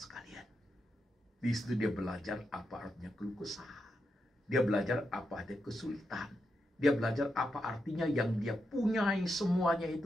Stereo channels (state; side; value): normal; both; correlation 0.85